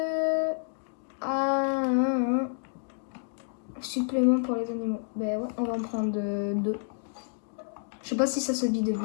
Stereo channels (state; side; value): silent; right; 58 dB below the other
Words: Supplément pour les animaux. Ben ouais, on va en prendre 2. Je sais pas si ça se vide